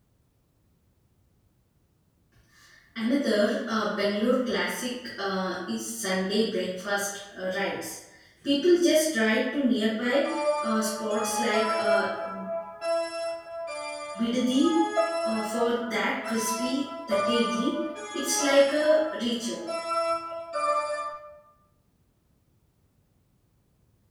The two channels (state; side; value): identical; both; correlation 1.00